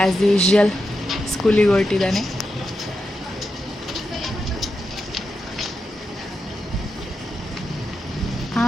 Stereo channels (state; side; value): normal; both; correlation 0.87